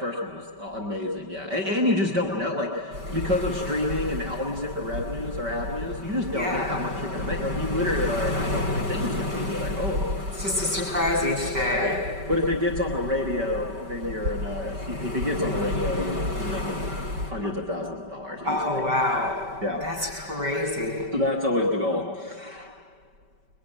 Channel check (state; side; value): late; left; 5.2 ms